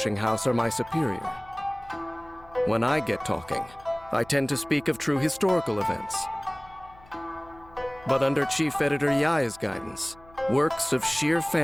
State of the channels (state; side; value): noise; left; hum, 24 dB below the sound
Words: House are my superior. When I get talking, I tend to speak of true historical events. But under Chief Editor Yaya's guidance, works of sheer